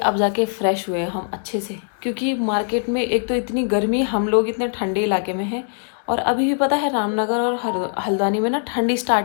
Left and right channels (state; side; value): silent; right; digital silence